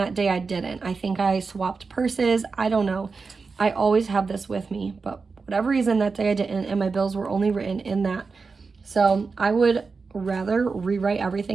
day I didn't. I think I swapped purses. I don't know. I always have this with me, but whatever reason that day I didn't, and my bills were only written in that. So I would rather rewrite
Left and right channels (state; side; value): quieter; left; 4.6 dB